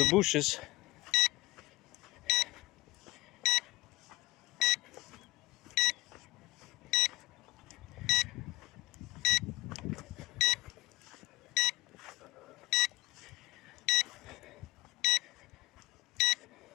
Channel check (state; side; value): quieter; right; 20.3 dB